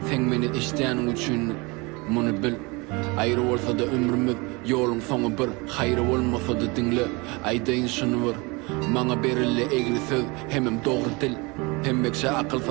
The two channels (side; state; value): left; quieter; 26.6 dB